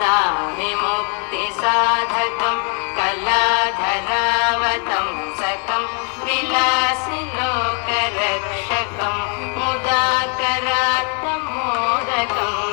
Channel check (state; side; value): quieter; right; 40.0 dB